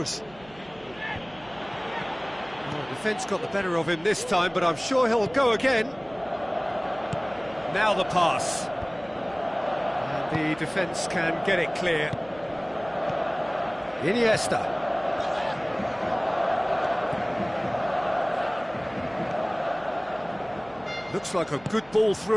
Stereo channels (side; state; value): right; noise; hum, 24 dB below the sound